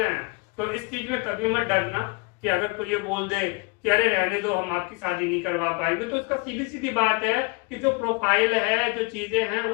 हैं। तो इस चीज में कभी मत डरना कि अगर कोई ये बोल दे कि अरे रहने दो, हम आपकी शादी नहीं करवा पाएंगे, तो इसका सीधी सीधी बात है कि जो प्रोफाइल है, जो चीजें हैं,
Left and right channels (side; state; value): right; quieter; 30.0 dB